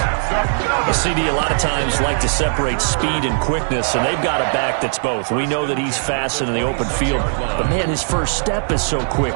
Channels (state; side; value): silent; left; digital silence